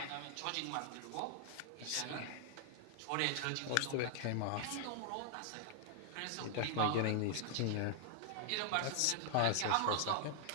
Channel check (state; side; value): different; both; correlation 0.00